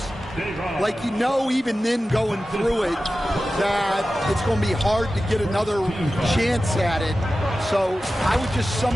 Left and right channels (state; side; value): normal; both; correlation 0.94